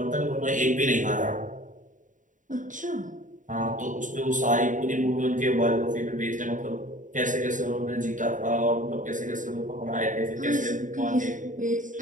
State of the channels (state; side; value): late; left; 0.37 ms